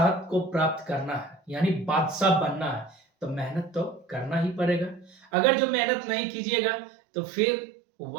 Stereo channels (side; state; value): left; drops out; at 5.2 s